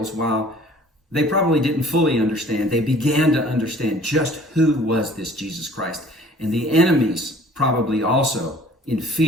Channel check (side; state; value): both; normal; correlation 0.51